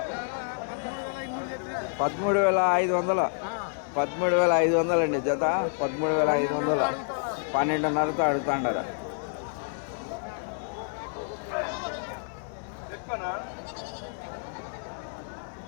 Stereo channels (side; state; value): right; silent; 59 dB below the other